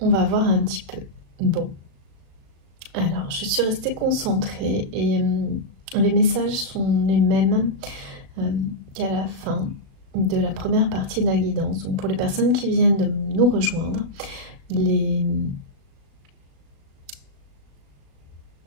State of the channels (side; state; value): left; late; 36 ms